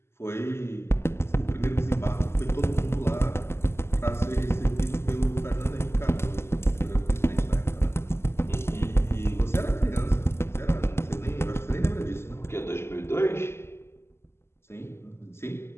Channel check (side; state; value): right; late; 0.12 ms